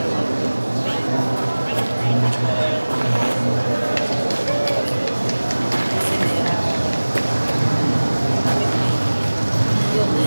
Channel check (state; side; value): inverted; both; correlation -1.00